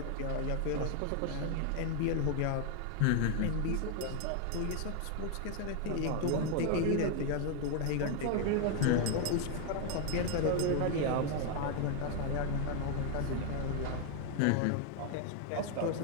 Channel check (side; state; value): both; different; correlation 0.00